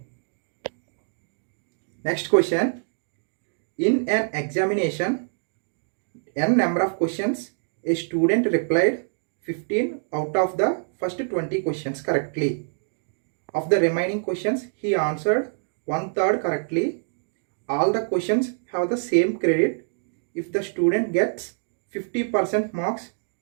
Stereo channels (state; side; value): silent; left; digital silence